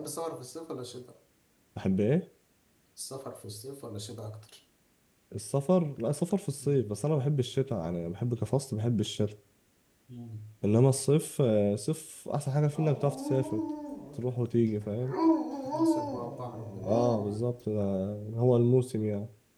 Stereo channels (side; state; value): both; identical; correlation 1.00